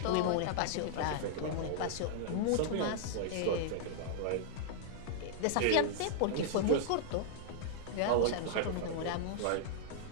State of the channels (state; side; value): different; both; correlation -0.01